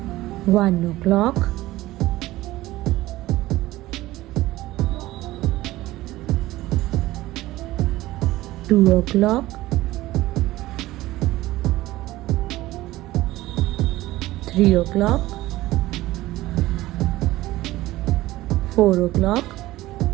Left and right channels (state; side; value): quieter; left; 17.1 dB